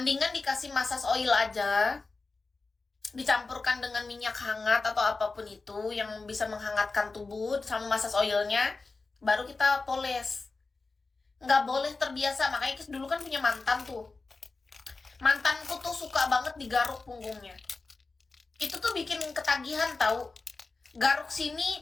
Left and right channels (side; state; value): right; quieter; 3.8 dB